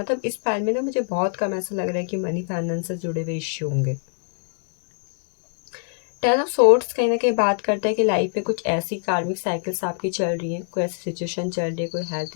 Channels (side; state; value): right; silent; digital silence